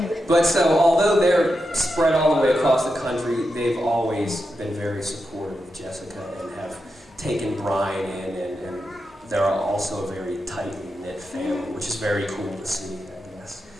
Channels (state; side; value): normal; both; correlation 0.88